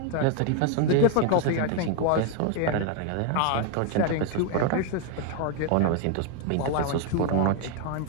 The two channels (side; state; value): both; different; correlation 0.01